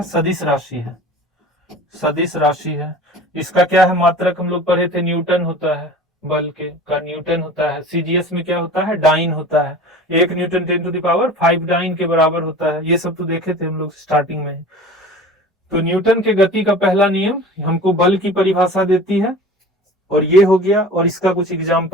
सदिश राशि है, सदिश राशि है। इसका क्या है, मात्रक हम लोग पढ़े थे, न्यूटन होता है, बल के का न्यूटन होता है। सीजीएस में क्या होता है, डाइन होता है, 1 न्यूटन 10⁵ डाइन के बराबर होता है। ये सब तो देखे थे हम लोग स्टार्टिंग में। तो न्यूटन के गति का पहला नियम हमको बल की परिभाषा देती है, और ये हो गया। और इसका कुछ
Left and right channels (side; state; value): both; normal; correlation 0.39